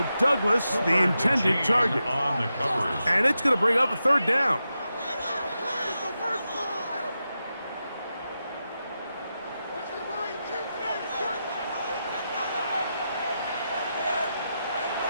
Douglas, the intended target. And it's going to bring up a 3rd down.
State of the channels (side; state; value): both; inverted; correlation -0.89